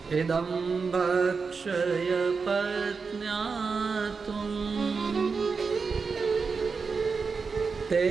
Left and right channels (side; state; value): left; quieter; 5.0 dB